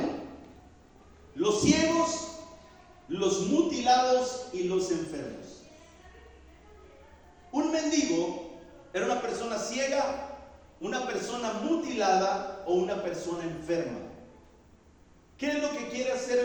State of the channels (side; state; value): both; identical; correlation 1.00